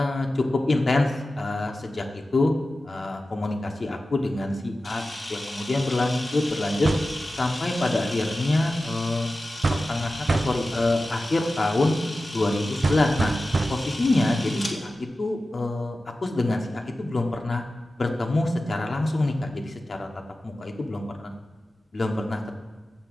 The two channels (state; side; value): normal; both; correlation 0.94